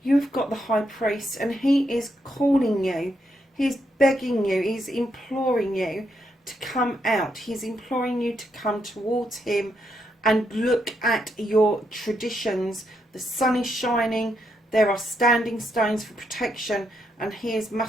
You've got the High Priest and he is calling you. He's begging you, he's imploring you to come out. He's imploring you to come towards him and look at your traditions. The sun is shining, there are standing stones for protection, and he is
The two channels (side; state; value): both; normal; correlation 0.79